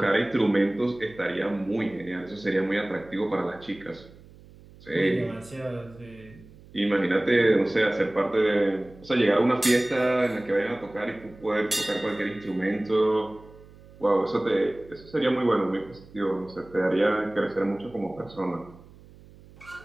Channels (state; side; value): noise; right; hum, 22 dB below the sound